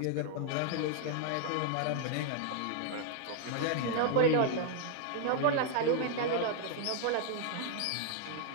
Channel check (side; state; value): both; different; correlation 0.00